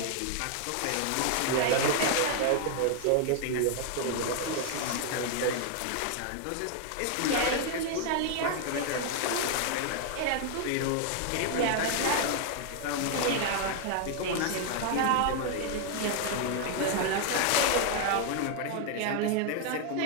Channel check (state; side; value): different; both; correlation 0.00